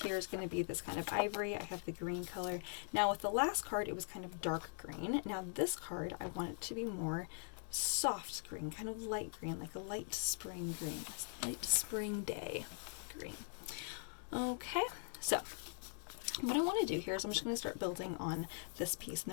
here is going to be this kind of ivory. I have the green color. Now with the last card, it was kind of dark green. Now this card, I want it to be more soft green, kind of light green, like a light spring green, a light spring day green. Okay, so what I want to do here is I'm just going to start building on this piece, and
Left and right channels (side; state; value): right; silent; digital silence